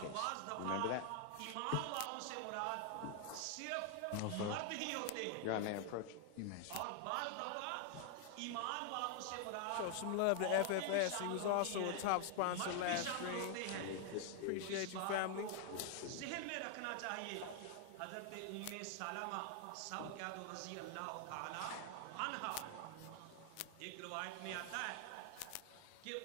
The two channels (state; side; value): different; both; correlation 0.00